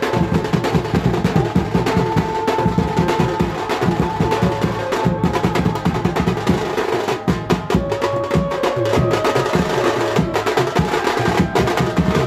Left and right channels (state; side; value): identical; both; correlation 1.00